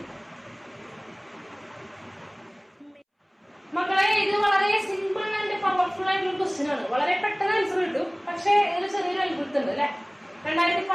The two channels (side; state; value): both; identical; correlation 1.00